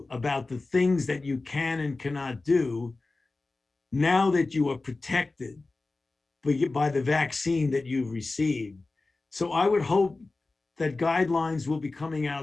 about the things that you can and cannot do now that you are protected by the vaccine that you've received. So I would hope that guidelines will be coming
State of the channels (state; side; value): quieter; right; 3.4 dB